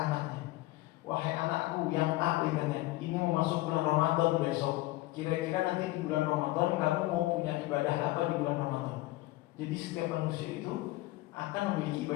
wahai anakku yang A, ini mau masuk bulan Ramadan besok. Kira-kira nanti di bulan Ramadan kamu mau punya ibadah apa di bulan Ramadan? Jadi setiap manusia itu akan memiliki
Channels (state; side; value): quieter; right; 18.5 dB